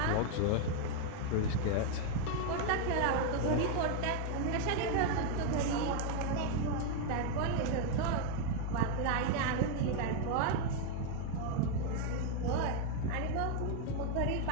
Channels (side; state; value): both; different; correlation 0.01